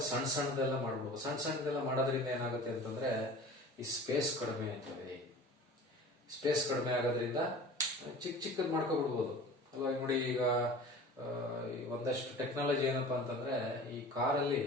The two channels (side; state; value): both; normal; correlation 0.40